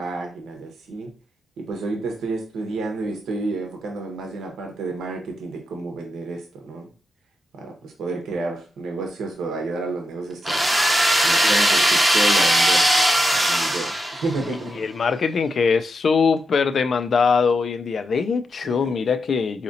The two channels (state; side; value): normal; both; correlation 0.86